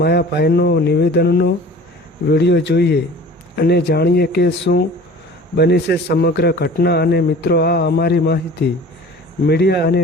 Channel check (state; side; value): normal; both; correlation 0.44